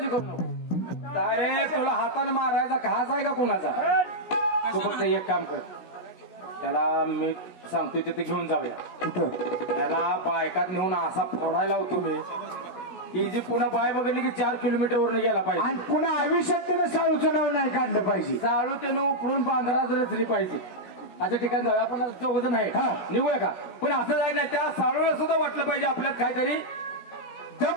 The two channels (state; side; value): late; right; 17 ms